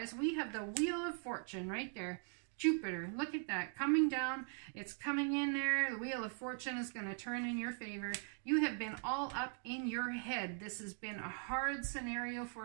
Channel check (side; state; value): left; silent; 51 dB below the other